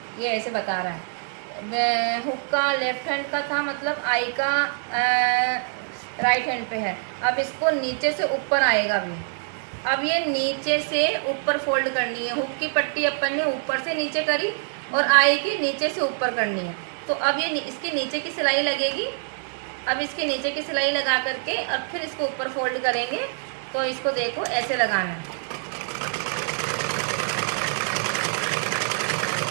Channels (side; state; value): left; silent; digital silence